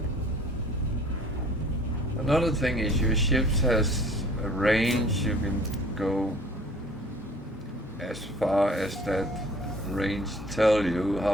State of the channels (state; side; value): normal; both; correlation 0.51